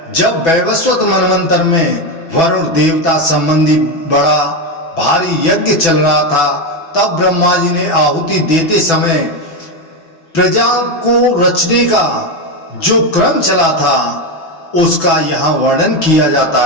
जब वैवस्वत मनवंतर में वरुण देवता संबंधी बड़ा भारी यज्ञ चल रहा था, तब ब्रह्मा जी ने आहुति देते समय प्रजा को रचने का जो क्रम चला था उसका यहाँ वर्णन किया जाता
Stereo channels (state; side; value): late; right; 6.1 ms